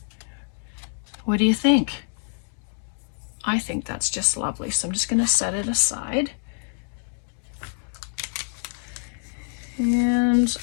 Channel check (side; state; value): right; silent; 55 dB below the other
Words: What do you think? I think that's just lovely. So I'm just going to set it aside. And